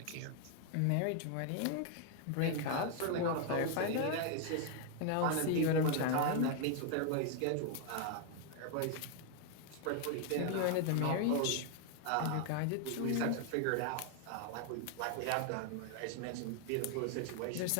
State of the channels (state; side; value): different; both; correlation 0.00